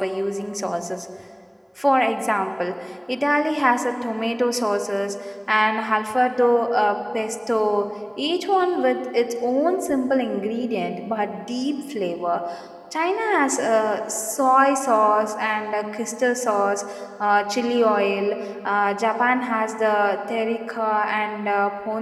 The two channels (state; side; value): identical; both; correlation 1.00